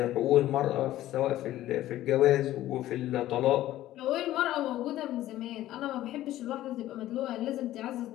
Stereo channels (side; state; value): right; quieter; 14.3 dB